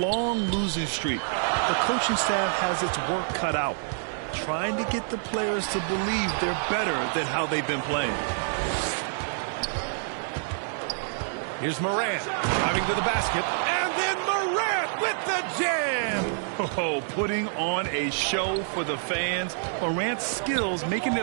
losing streak. The coaching staff has its work cut out, trying to get the players to believe they're better than how they've been playing. Here's Morant driving to the basket, and then Morant with the jam. Oh, putting on a show for the fans. Morant's skills making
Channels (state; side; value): silent; left; digital silence